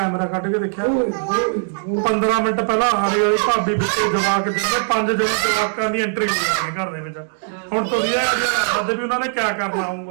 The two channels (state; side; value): silent; left; 66 dB below the other